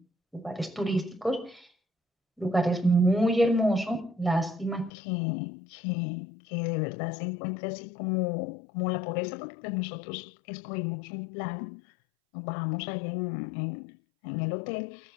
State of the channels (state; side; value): drops out; right; at 4.9 s